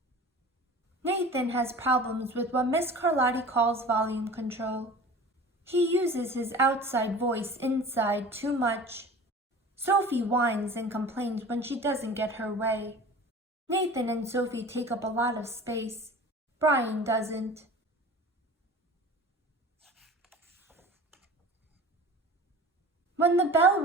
Nathan has problems with what Miss Carlotti calls volume control. He uses his outside voice inside too much. Sophie whines and complains when she doesn't get her way. Nathan and Sophie take up a lot of space. Brian doesn't. When the bell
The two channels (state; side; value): normal; both; correlation 0.40